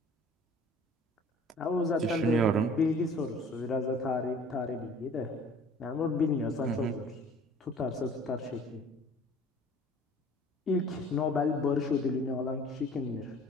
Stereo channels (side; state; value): both; normal; correlation 0.49